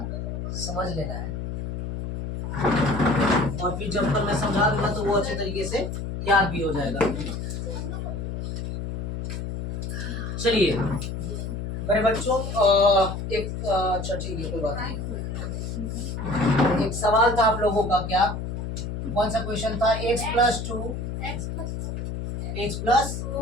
समझ लेना है, और फिर जब कल मैं समझा दूंगा तो वो अच्छे तरीके से याद भी हो जाएगा। चलिए मेरे बच्चों, एक अच्छा ठीक है, कोई बात नहीं। एक सवाल था आप लोगों का, क्या कौन सा क्वेश्चन था? x + 2 x +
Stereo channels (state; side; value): noise; left; hum, 5 dB below the sound